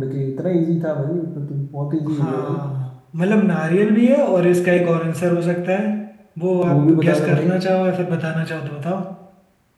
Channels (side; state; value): both; identical; correlation 1.00